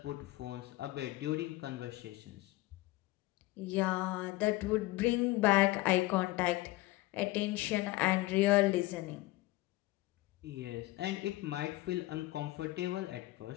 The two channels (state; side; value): quieter; right; 18.9 dB